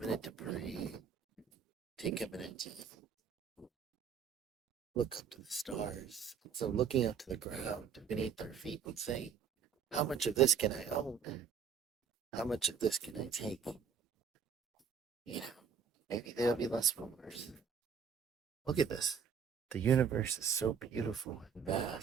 to pray, take a minute to look up to the stars. So looking up to the ground beneath our feet and saying, how much of this can I own? How much of this can I take? You know, maybe there'll be less wars. Look at this. The universe is so beautiful and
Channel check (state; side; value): quieter; left; 6.8 dB